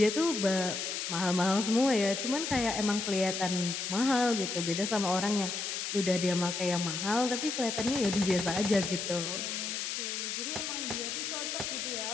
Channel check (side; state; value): left; noise; hiss, 3 dB below the sound